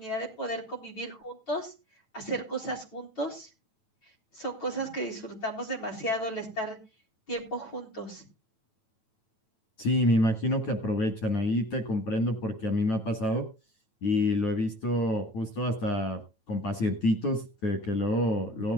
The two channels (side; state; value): right; late; 9.1 ms